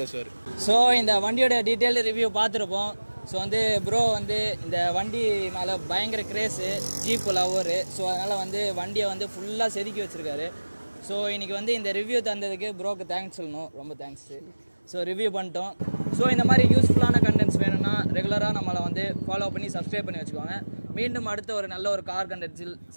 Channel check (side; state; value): both; inverted; correlation -1.00